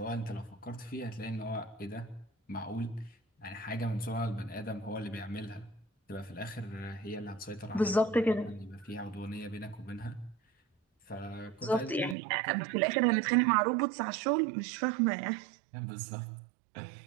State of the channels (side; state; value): left; drops out; at 12.2 s